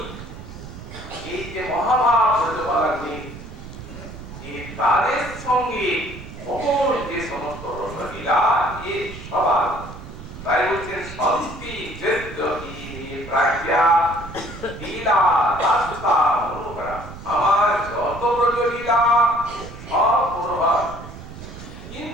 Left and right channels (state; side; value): noise; right; rumble, 13 dB below the sound